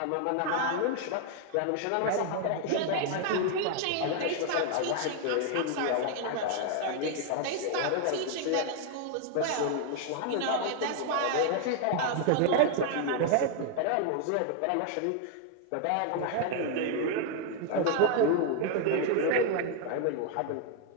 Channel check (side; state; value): both; different; correlation 0.00